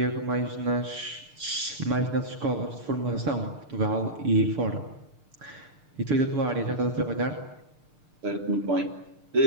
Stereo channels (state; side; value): late; left; 6.6 ms